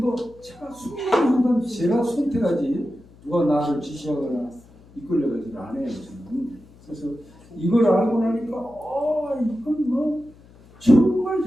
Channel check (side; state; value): left; noise; hum, 25 dB below the sound